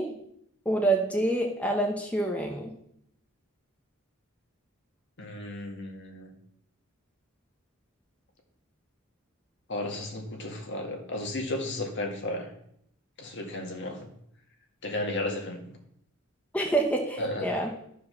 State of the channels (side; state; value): both; normal; correlation 0.44